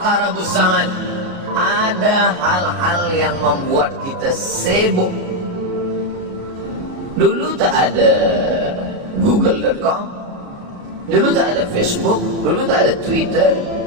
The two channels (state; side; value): late; left; 33 ms